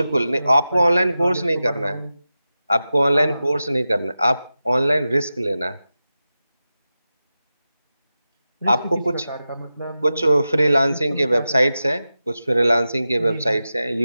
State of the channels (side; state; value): both; inverted; correlation -0.93